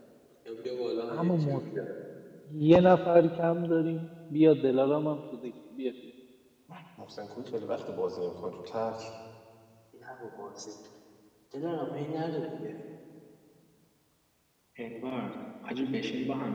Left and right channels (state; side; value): identical; both; correlation 1.00